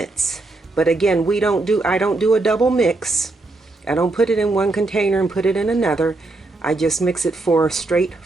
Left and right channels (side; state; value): left; quieter; 3.1 dB